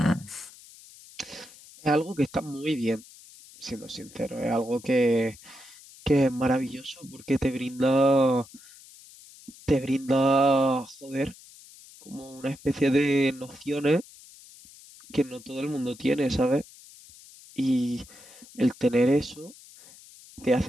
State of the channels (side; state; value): left; noise; hiss, 21 dB below the sound